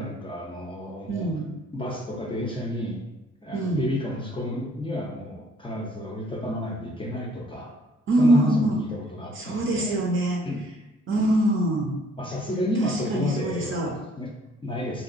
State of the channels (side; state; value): both; normal; correlation 0.61